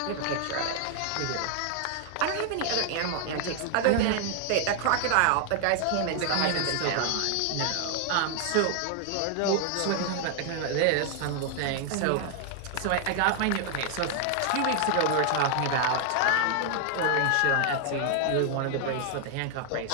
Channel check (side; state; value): both; different; correlation 0.00